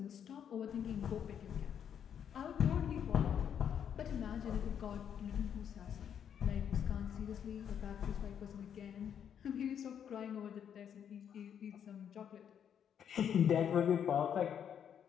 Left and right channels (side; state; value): right; quieter; 8.5 dB